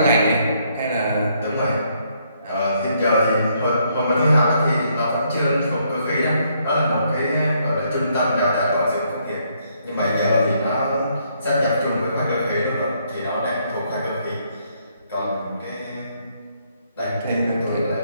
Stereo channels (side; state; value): both; inverted; correlation -0.71